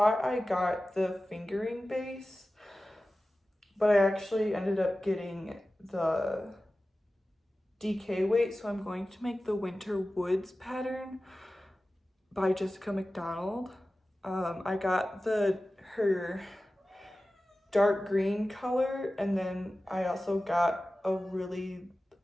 I got the fingering base, but I actually ended up getting the DK weight, so I'm going to make the Winter Woods pattern by Jessica McDonald. I got her dark green color, and then I also got a really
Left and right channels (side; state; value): both; normal; correlation 0.95